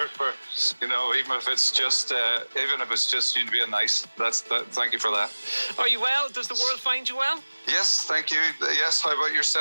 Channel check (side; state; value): both; inverted; correlation -1.00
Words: for, even if it's just you to be a nice, thank you for that. Are you well? Does the world find you well? Yes, thank you. Yes, how about